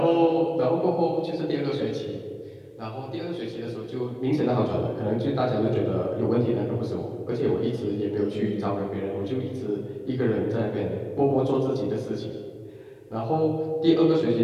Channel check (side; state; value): both; identical; correlation 1.00